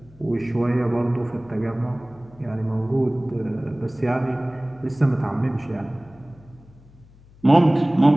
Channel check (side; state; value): left; noise; hum, 25 dB below the sound